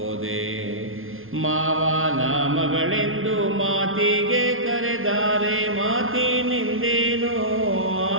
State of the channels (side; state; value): left; late; 0.60 ms